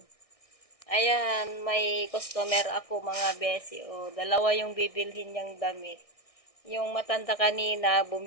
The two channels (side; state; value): right; late; 1.6 ms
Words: Ayan, may customer ako, mga besi. Dalawa yung bibilhin niyang damit. Yung matanda kanina,